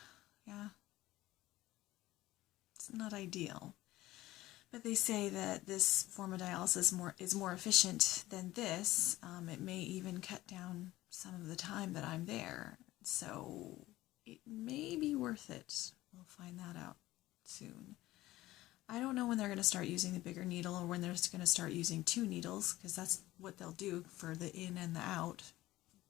Yeah. It's not ideal. But they say that this form of dialysis is more efficient than this. It may even cut down some of the time that I'm there. So it may be worth it. We'll find that out soon. I don't know when they're going to start using the bigger needle or when they're going to start using 2 needles, because that's what they'll do for the in and the out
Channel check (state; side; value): quieter; right; 16.8 dB